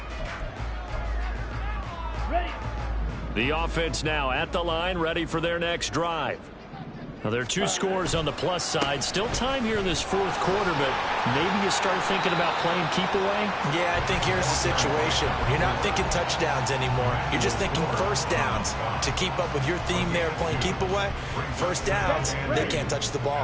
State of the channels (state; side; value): identical; both; correlation 1.00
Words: Ready. The offense now at the line, ready for their next drive. Now, there are 2 scores on the plus side. Still time here in this 4th quarter, but maybe you start thinking about playing keep away? Yeah, I think here's the situation. You're not thinking touchdowns anymore. You're just thinking first downs. To keep up with your theme there, playing keep away, first downs, they can't touch the